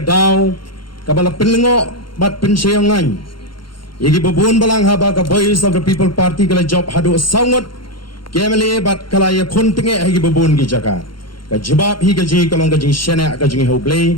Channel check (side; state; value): right; late; 0.73 ms